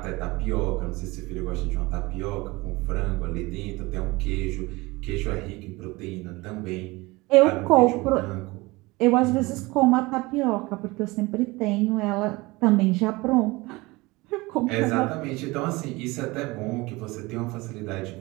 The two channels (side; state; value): left; quieter; 22.5 dB